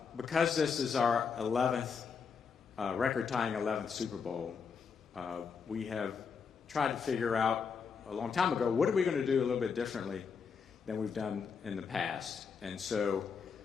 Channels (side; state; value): right; quieter; 5.9 dB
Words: Because this is our 11th, record-tying 11th Super Bowl, we have tried to figure out a long time ago, what are we going to do a little bit differently than we've done in the past? And so